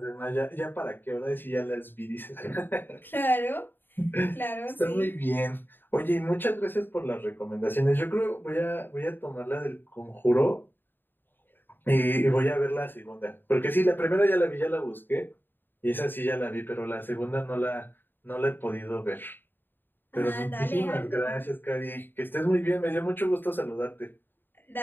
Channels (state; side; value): late; right; 0.095 ms